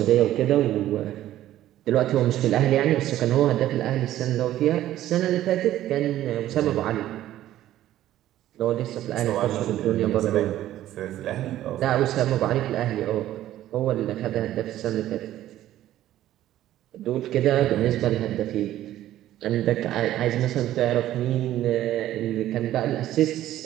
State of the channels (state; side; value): quieter; left; 13.4 dB